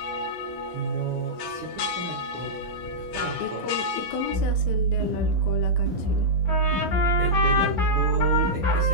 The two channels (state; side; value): normal; both; correlation -0.11